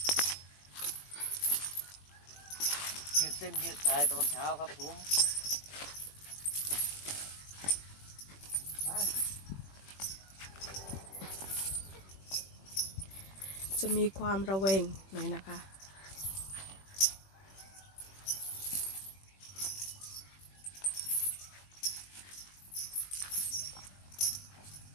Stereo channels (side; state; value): right; late; 21 ms